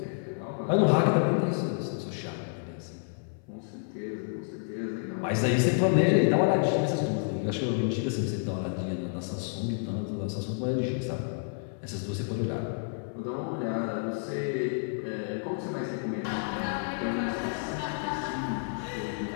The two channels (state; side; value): silent; right; 56 dB below the other